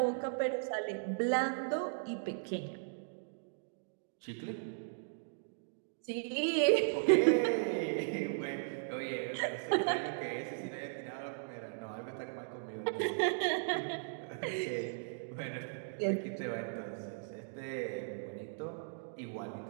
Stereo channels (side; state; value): left; silent; digital silence